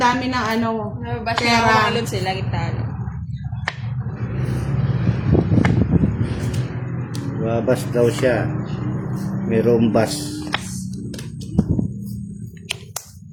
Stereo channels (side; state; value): both; identical; correlation 1.00